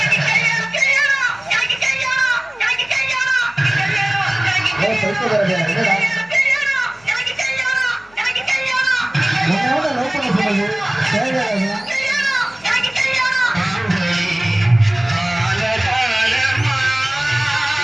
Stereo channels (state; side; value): noise; left; hum, 29 dB below the sound